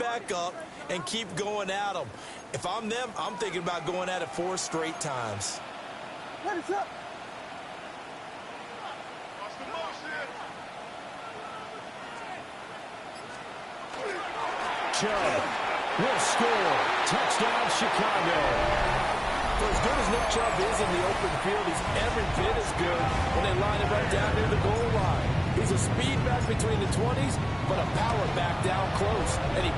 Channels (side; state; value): both; identical; correlation 1.00